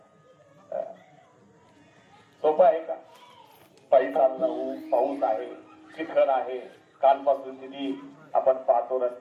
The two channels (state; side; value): identical; both; correlation 1.00